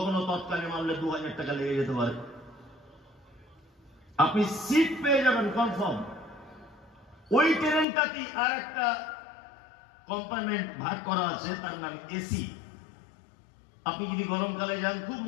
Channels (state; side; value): drops out; right; at 7.9 s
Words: তৎকালে মারলে 2000 টাকা লেগে যেতে পারে। আপনি সিট পেয়ে যাবেন কনফার্ম। ওই ট্রেনটাতেই আর একটা কম্পার্টমেন্ট ভাগ করা আছে, তার নাম এসি। আপনি যদি গরমকালে যান খুব